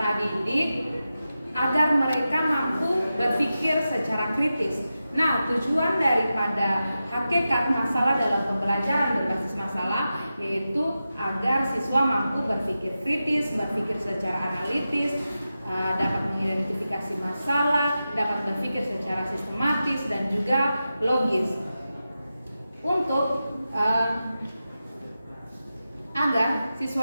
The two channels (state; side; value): inverted; both; correlation -0.92